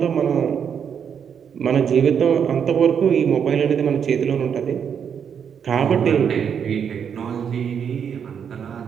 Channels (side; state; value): left; quieter; 7.6 dB